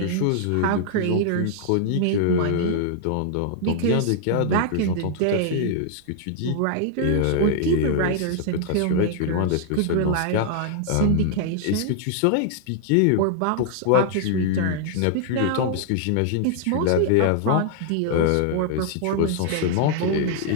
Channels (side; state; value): both; different; correlation -0.01